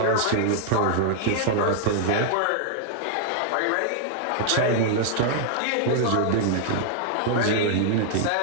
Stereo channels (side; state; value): both; different; correlation -0.01